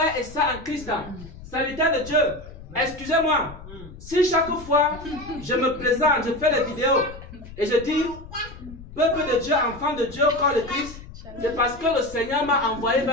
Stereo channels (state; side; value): noise; left; rumble, 16 dB below the sound